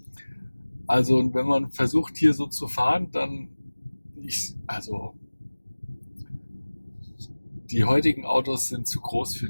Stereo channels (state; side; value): inverted; both; correlation -1.00